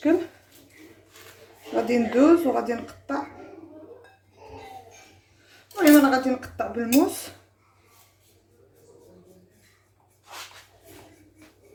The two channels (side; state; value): both; identical; correlation 1.00